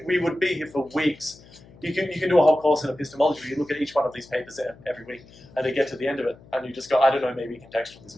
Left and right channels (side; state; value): left; noise; hum, 24 dB below the sound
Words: would be here for weeks. You can do a whole course in epistemology where you look at each one of these papers every week, and you get to the end of it, and you just go, I don't know, maybe